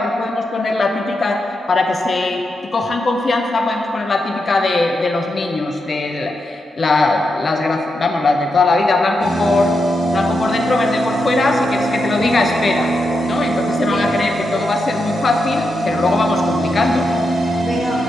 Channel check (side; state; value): both; normal; correlation 0.85